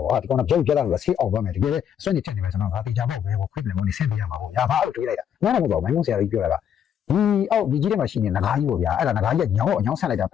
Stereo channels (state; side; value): quieter; right; 8.9 dB